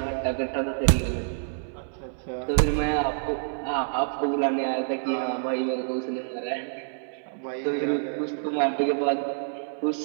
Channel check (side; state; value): left; silent; 60 dB below the other